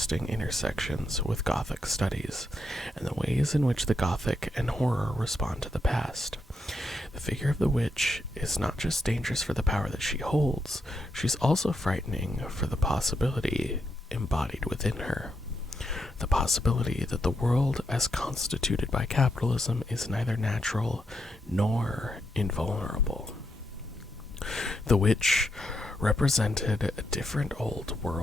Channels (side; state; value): both; normal; correlation 0.82